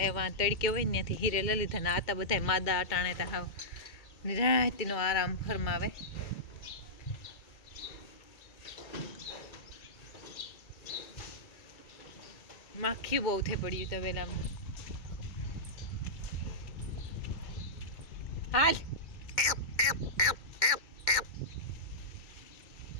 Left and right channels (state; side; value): late; right; 2.1 ms